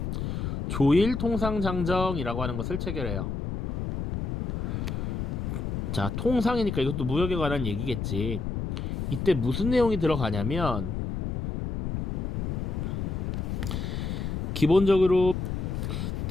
조일통상장정이라고 하는 것을 체결해요. 자, 통상이니까 이것도 무역에 관한 얘기겠지. 이때 무슨 내용이 들어가냐면 기본적으로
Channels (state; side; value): noise; left; rumble, 3 dB below the sound